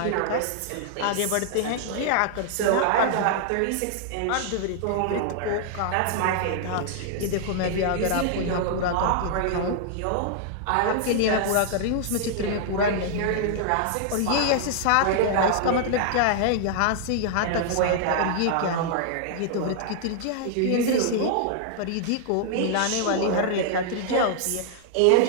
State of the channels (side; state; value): both; different; correlation -0.01